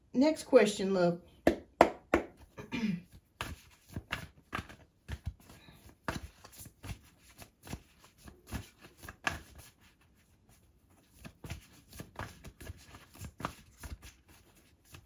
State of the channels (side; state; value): both; identical; correlation 1.00